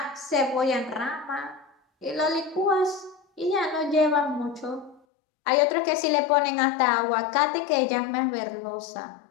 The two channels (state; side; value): drops out; right; at 5.0 s